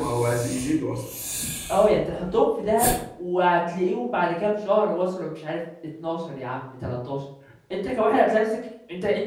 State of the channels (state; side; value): identical; both; correlation 1.00